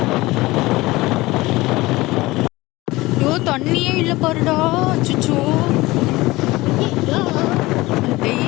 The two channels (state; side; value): quieter; right; 20.1 dB